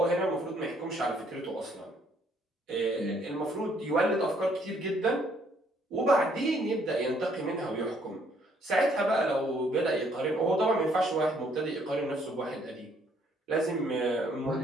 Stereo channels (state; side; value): normal; both; correlation 0.66